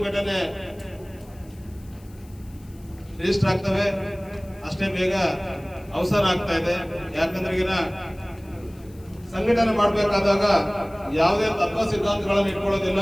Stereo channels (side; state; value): left; noise; hiss, 27 dB below the sound